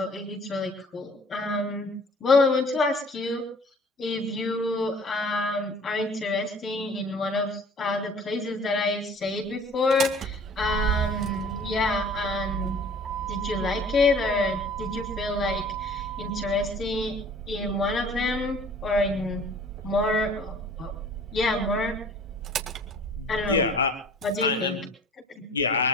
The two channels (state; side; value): normal; both; correlation 0.50